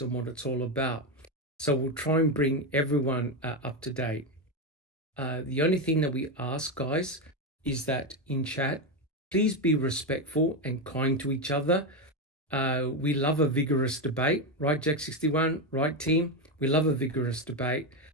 what it's all about. So we'll try and bring everyone up to date. The only thing that we ask, guys, is that in chat, please be respectful and kind to each other. We love a vigorous debate, right, Jack61, right, team? We love a vigorous debate,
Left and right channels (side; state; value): both; normal; correlation 0.10